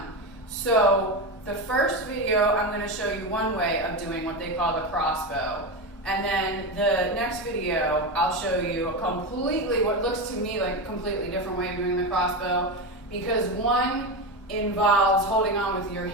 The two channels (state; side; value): normal; both; correlation 0.17